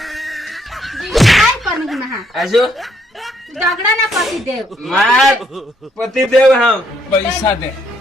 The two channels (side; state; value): both; normal; correlation 0.71